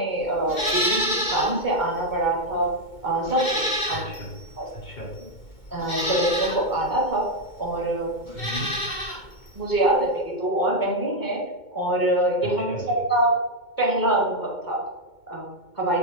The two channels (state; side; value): late; right; 2.2 ms